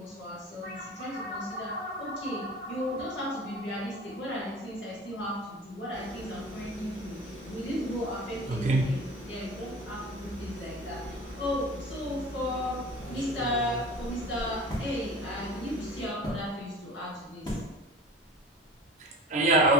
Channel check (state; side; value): normal; both; correlation 0.39